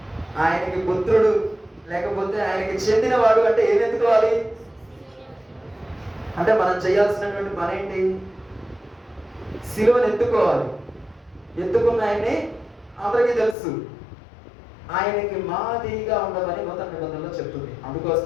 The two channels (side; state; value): right; drops out; at 13.6 s